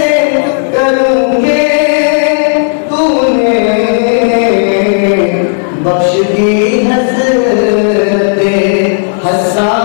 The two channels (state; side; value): silent; right; digital silence